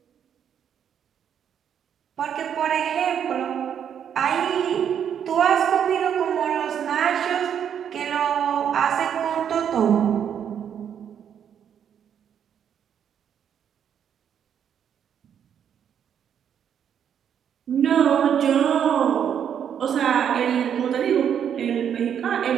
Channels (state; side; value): quieter; left; 8.6 dB